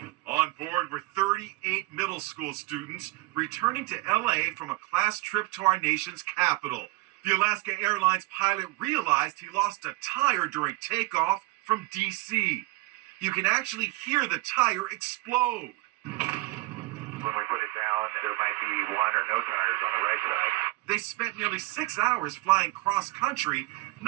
On board were 38 middle school students returning to LA from a class trip to our nation's capital. The Alaska Airlines pilot realized he lost a tire during takeoff from DC. You can actually hear the tire explode. When we put it down, there might be one or no tires on the right side. They spent nearly 6 hours flying cross-country,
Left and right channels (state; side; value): quieter; left; 21.8 dB